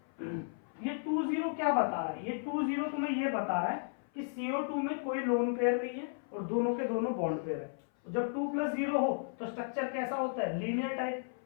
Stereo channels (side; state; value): right; silent; 55 dB below the other